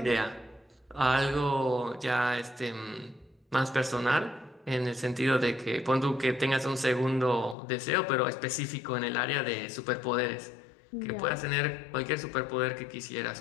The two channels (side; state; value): right; drops out; at 7.6 s